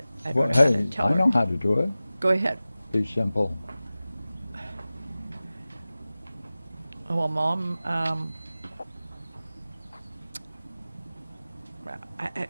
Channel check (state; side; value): inverted; both; correlation -0.97